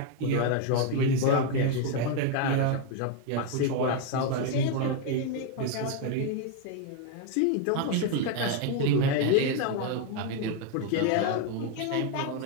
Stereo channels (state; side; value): different; both; correlation 0.01